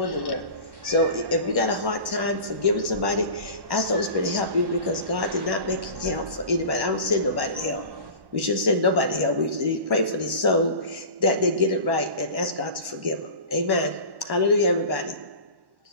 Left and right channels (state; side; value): late; left; 1.1 ms